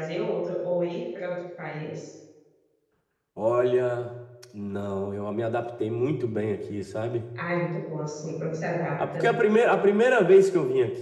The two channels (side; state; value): both; identical; correlation 1.00